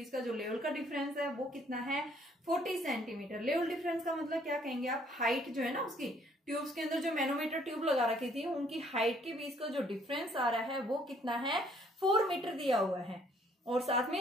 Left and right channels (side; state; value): both; normal; correlation 0.63